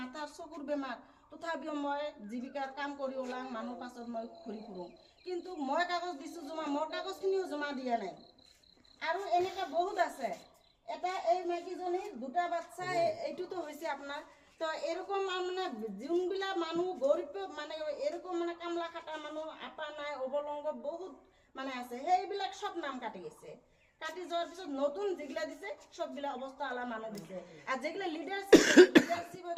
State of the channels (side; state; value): both; identical; correlation 1.00